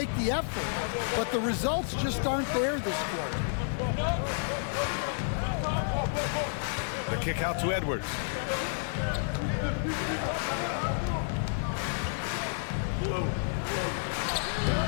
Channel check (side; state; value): right; silent; 57 dB below the other